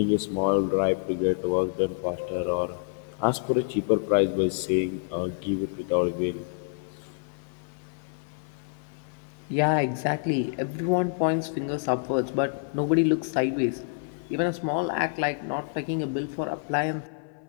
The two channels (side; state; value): right; silent; 60 dB below the other